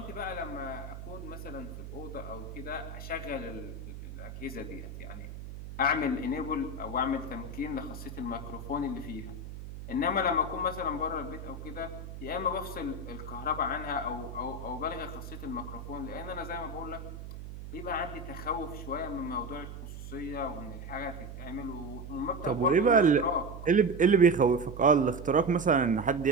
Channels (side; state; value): right; noise; hum, 10 dB below the sound